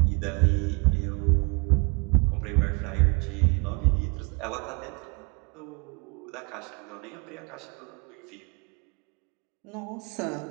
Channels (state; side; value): quieter; left; 32.6 dB